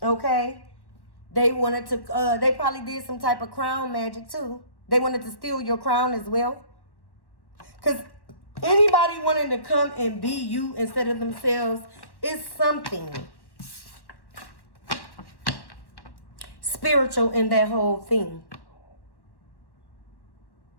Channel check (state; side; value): late; right; 1.1 ms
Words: Okay? They wanted to, they probably did some type of crown magic too. They wanted to steal your crown as well. Because anybody wanting to come and be you instead of themselves is something spiritual in that whole thing.